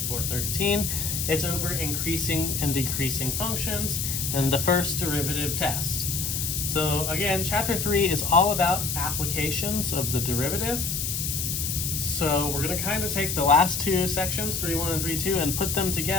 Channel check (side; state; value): left; noise; hiss, 2 dB below the sound